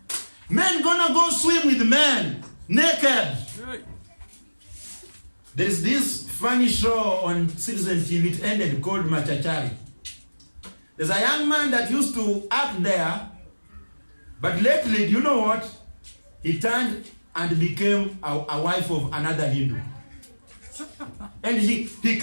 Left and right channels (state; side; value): inverted; both; correlation -1.00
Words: Men gonna go swim with men, naked. There's this funny show on Citizen TV, it ended, called Machachari. There's a young man that used to act there, but lately, do you know what? He turned and became a wife of another Hindu. And he